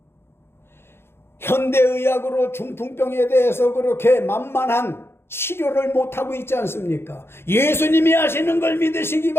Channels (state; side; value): late; right; 0.12 ms